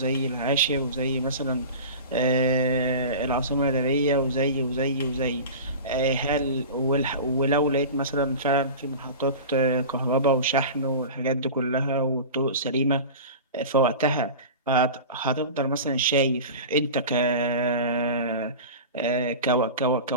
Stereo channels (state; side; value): inverted; both; correlation -0.32